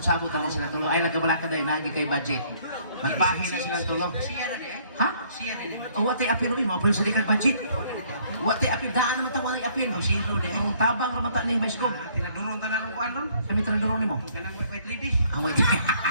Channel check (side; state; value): both; inverted; correlation -0.62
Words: ra man sila tulo. Ay nagkabalaka dai nagi kay budget. Magbahin na sila tulo. Sierra di eh? Ha? Sierra ni. O ate apiro mo apil sa dikag budget. Wala di apil. Wati apin, daan naman tawang ay apin. Ang sino de. Ang tabang naman ta ni Baiskog. Tinaduron ta na ng kuan ron. Kami tinaduron mo. Ganang white lady. Ang wait.